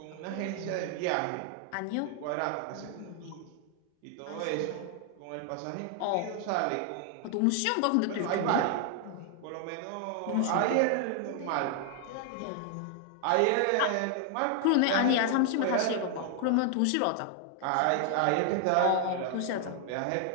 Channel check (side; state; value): both; different; correlation 0.00